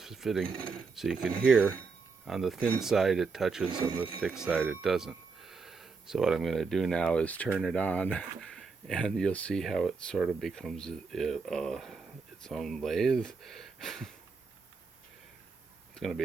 fitting, so you can hear on the thin side it touches, on the thick side it doesn't. So what I'm going to do now is turn it on, and you'll see how it sort of becomes its own lathe. It's going to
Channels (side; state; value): left; quieter; 4.7 dB